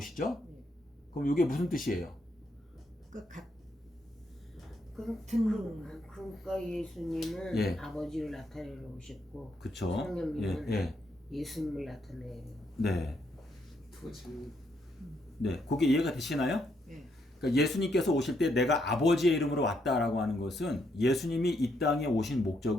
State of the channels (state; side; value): normal; both; correlation 0.76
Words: 네. 그럼 이게 무슨 뜻이에요? 그러니까 예수님은 예. 아버지를 나타내러 오셨고 그쵸? 성령님은 예수님을 나타내요. 네. 네, 그게 이해가 되시나요? 네. 그러니까 예수님께서 오실 때 내가 아버지의 이름으로 왔다라고 하는 것은 예수님이 이 땅에 오신